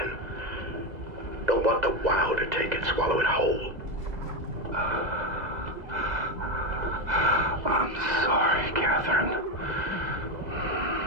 Don't want the wow to take it, swallow it whole. I'm sorry, Catherine.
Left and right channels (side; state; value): left; late; 2.0 ms